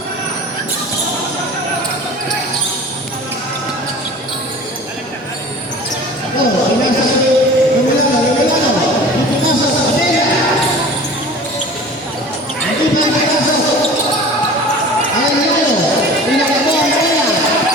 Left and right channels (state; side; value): normal; both; correlation 0.41